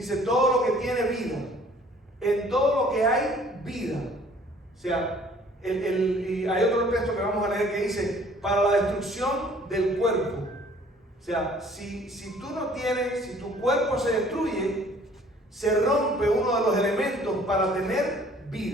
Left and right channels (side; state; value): both; normal; correlation 0.55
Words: todo lo que tiene vida, en todo lo que hay vida. O sea, y hay otro texto que vamos a leer que dice, para la destrucción del cuerpo. O sea, si tú no tienes, si tu cuerpo se destruye, se rompe uno de los elementos para tener